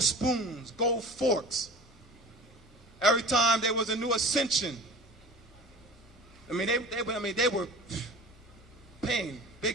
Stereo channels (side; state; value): both; normal; correlation 0.38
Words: spoons, gold forks. Every time there was a new ascension, they were paying